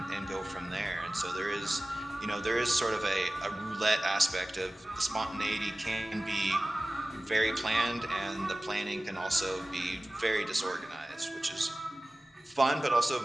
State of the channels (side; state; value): both; normal; correlation 0.97